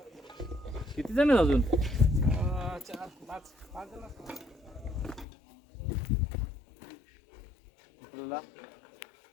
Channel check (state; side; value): drops out; right; at 5.2 s